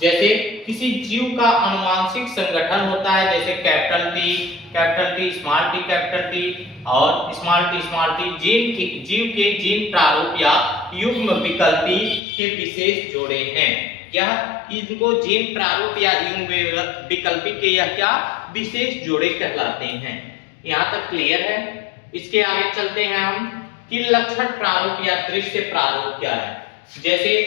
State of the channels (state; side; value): drops out; right; at 12.2 s